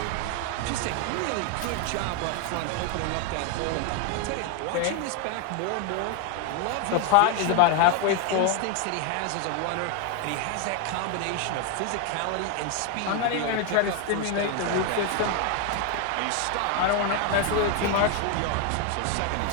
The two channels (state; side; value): different; both; correlation 0.01